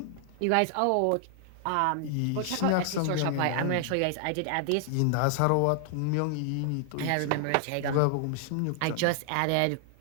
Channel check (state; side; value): different; both; correlation 0.00